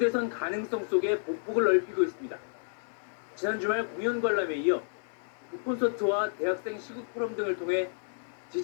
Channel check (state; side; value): silent; right; digital silence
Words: 가능성 속에 보폭을 넓히고 있습니다. 지난 주말 공연 관람에 이어 콘서트와 대학생 시국 포럼 등을 통해